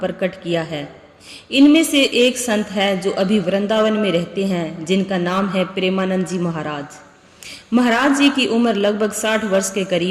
किया है। इनमें से एक संत है जो अभी वृंदावन में रहते हैं, जिनका नाम है प्रेमानंद जी महाराज। महाराज जी की उम्र लगभग 60 वर्ष के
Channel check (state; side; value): identical; both; correlation 1.00